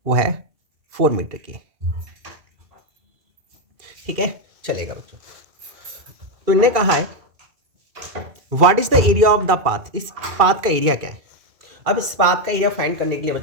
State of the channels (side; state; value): left; late; 2.1 ms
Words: वो है 4 मीटर की। ठीक है, चलेगा बच्चों। तो इन्होंने कहा है what is the area of the path. इस पाथ का एरिया क्या है? अब इस पाथ का एरिया फाइंड करने के लिए